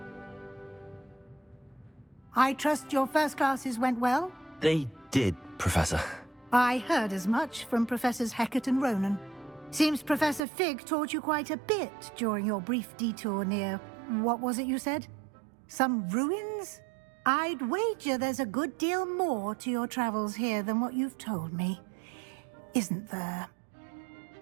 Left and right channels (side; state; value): left; drops out; at 10.4 s